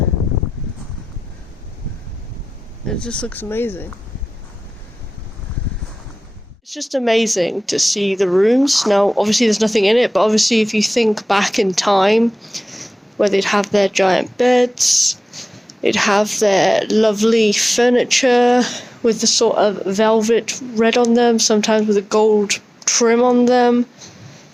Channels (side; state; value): both; normal; correlation 0.96